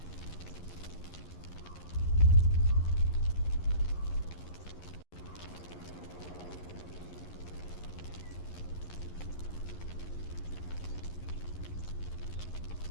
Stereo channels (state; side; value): late; right; 11 ms